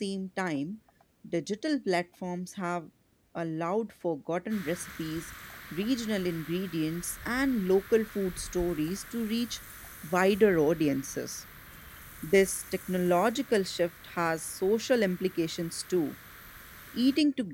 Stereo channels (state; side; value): identical; both; correlation 1.00